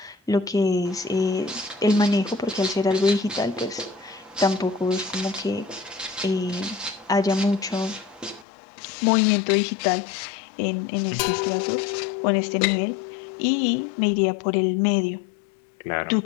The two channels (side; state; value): right; drops out; at 8.5 s